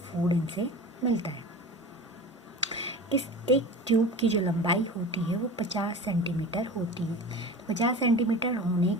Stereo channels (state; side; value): normal; both; correlation 0.35